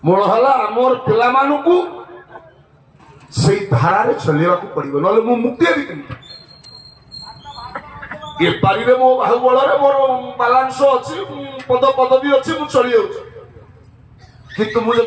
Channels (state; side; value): identical; both; correlation 1.00